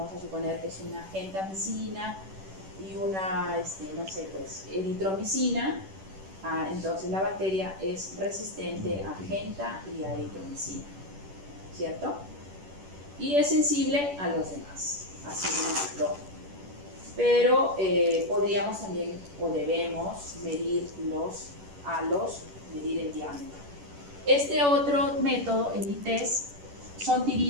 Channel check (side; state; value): left; late; 10 ms